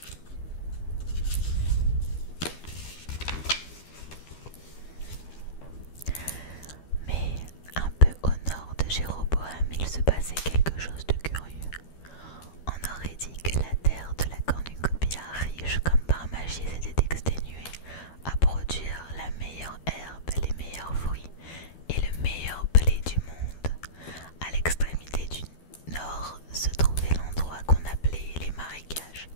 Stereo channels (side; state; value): right; late; 12 ms